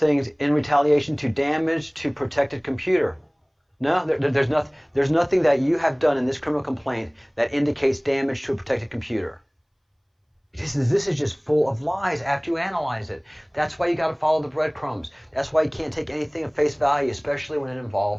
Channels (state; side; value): identical; both; correlation 1.00